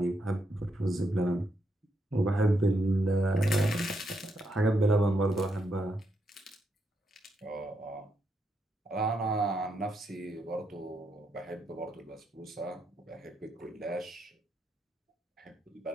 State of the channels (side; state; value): both; normal; correlation 0.80